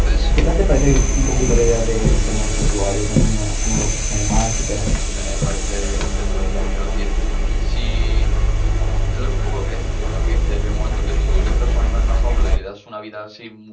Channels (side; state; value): both; identical; correlation 1.00